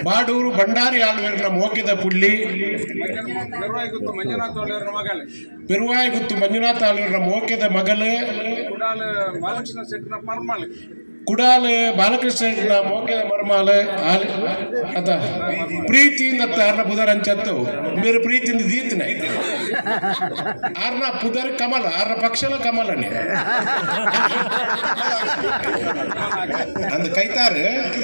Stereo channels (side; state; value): both; inverted; correlation -1.00